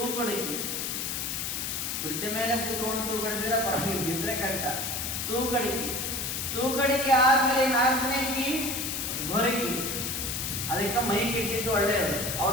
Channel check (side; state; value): left; noise; hiss, 2 dB below the sound